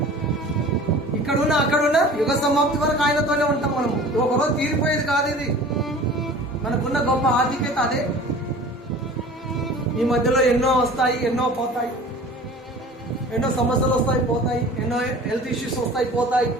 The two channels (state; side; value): normal; both; correlation 0.42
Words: ఇక్కడున్నా అక్కడున్నా యుగ సమాప్తి వరకు ఆయనతోనే ఉంటాం మనము. ఒకరోజు తీరిపోయేది కాదు ఇది. మనకున్న గొప్ప ఆధిక్యత అదే. ఈ మధ్యలో ఎన్నో వస్తాయి, ఎన్నో పోతాయి. ఎన్నో సమస్యలు వస్తాయి, పోతాయి. ఎన్నో హెల్త్ ఇష్యూస్ వస్తాయి, పోతాయి.